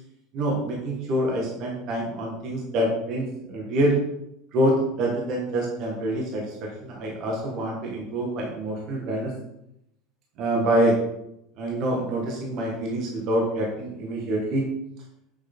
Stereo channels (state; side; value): normal; both; correlation 0.46